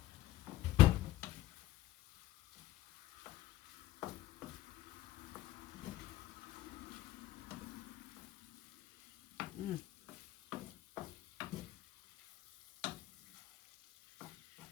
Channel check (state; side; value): quieter; right; 15.1 dB